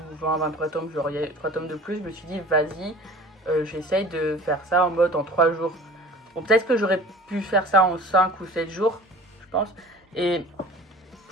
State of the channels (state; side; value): normal; both; correlation 0.43